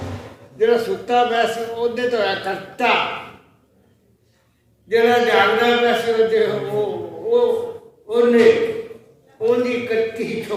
जरा सुता वैसे ओदे तो है कट्टा, जरा जागदा वैसे ओदे वो ओने ओनी कट्टी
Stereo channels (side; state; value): both; identical; correlation 1.00